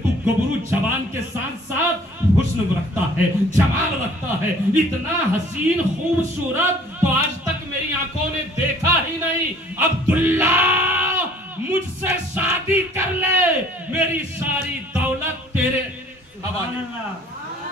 تو گبرو جوان کے ساتھ ساتھ حسن رکھتا ہے، جمال رکھتا ہے، اتنا حسین خوبصورت تو آج تک میری آنکھوں نے دیکھا ہی نہیں۔ عبداللہ مجھ سے شادی کر لے، میری ساری دولت تیرے حوالے۔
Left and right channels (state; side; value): normal; both; correlation 0.54